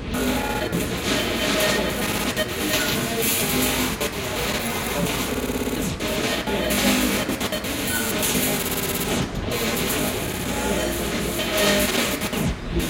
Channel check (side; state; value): both; identical; correlation 1.00